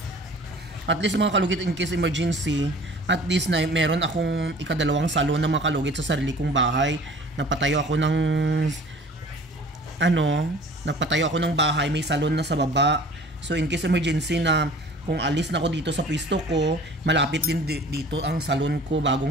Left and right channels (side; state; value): both; normal; correlation 0.47